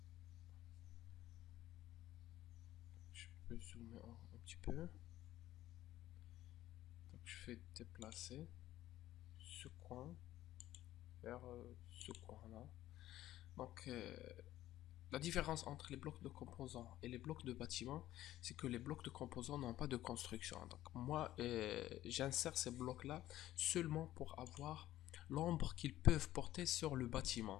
je peux zoomer un petit peu. Donc, je fais déplacer ce coin vers ce coin là. Donc, la différence entre les blocs de composants et les blocs de bâtiment, c'est que les blocs de composants n'ont pas de construction. Donc moi, j'insère ces blocs-là seulement pour avoir l'ombre qu'ils peuvent porter sur le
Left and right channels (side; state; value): right; quieter; 14.2 dB